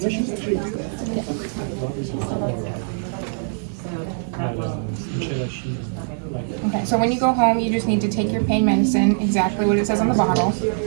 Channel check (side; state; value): left; silent; digital silence